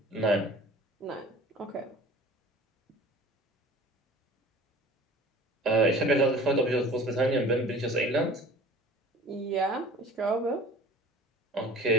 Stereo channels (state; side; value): normal; both; correlation 0.43